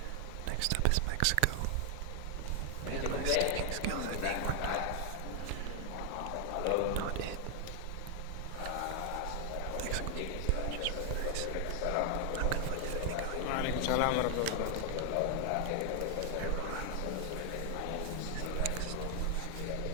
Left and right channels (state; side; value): different; both; correlation 0.00